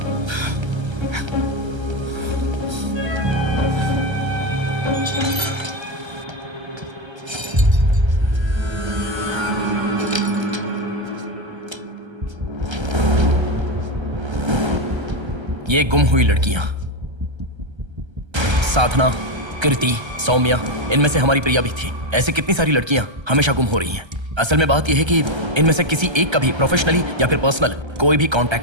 ये गुम हुई लड़कियां साधना, कृति, सौम्या, इनमें से हमारी प्रिया भी थी। ऐसे कितनी सारी लड़कियां हमेशा गुम हो रही हैं। असल में बात यह है कि इनमें से किसी एक का भी प्रोफेशनली या फिर पर्सनल कोई भी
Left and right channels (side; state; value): left; late; 1.3 ms